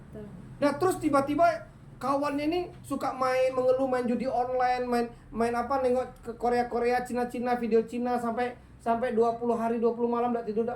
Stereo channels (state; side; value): identical; both; correlation 1.00